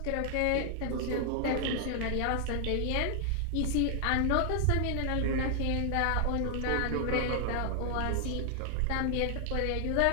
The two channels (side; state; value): both; different; correlation 0.00